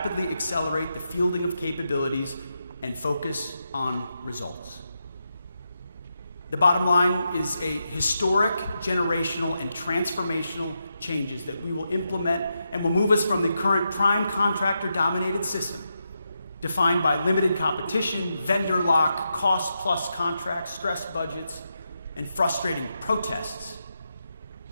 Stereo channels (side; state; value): both; inverted; correlation -0.85